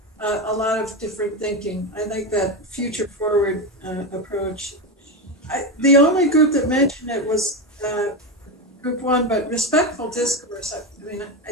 different thinking. I like that future forward approach. The only group that mentioned it was Group 1, but respectful discourse. I mean,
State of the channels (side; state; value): both; normal; correlation 0.14